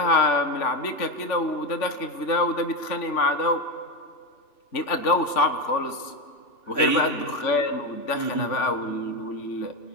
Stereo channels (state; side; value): late; right; 3.4 ms